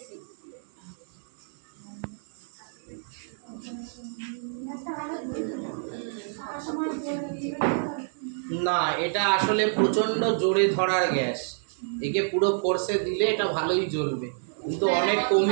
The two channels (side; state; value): left; silent; 59 dB below the other